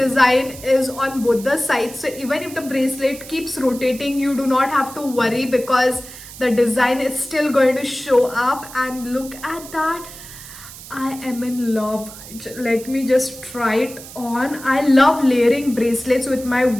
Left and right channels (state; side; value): noise; right; hiss, 15 dB below the sound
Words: is on both the sides, so even if the bracelet keeps rotating, you do not have to worry, because the design is still going to show up. And look at that. I am in love. Let me just try it on. I love layering bracelets with my